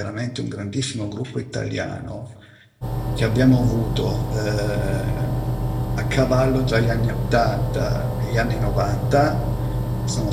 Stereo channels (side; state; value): both; identical; correlation 1.00